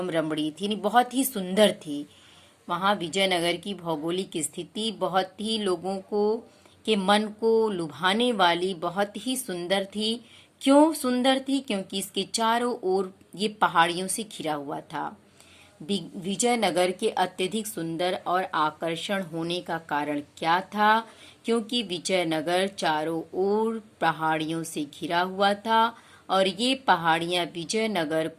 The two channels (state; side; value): identical; both; correlation 1.00